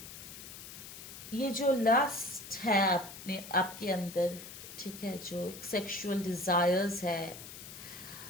ये जो लस्ट है अपने आपके अंदर, ठीक है, जो एक सेक्सुअल डिजायर्स है,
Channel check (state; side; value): noise; left; hiss, 13 dB below the sound